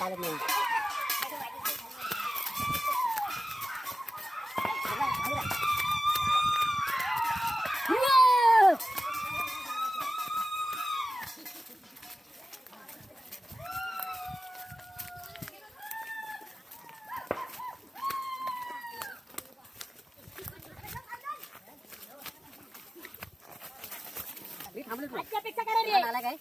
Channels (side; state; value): both; normal; correlation 0.95